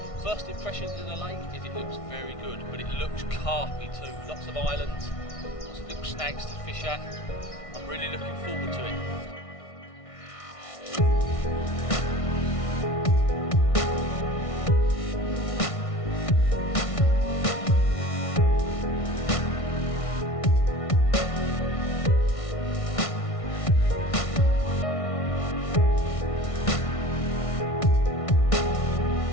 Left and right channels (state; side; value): late; right; 1.6 ms